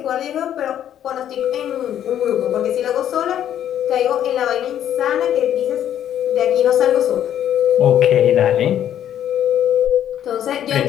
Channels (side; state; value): right; quieter; 10.6 dB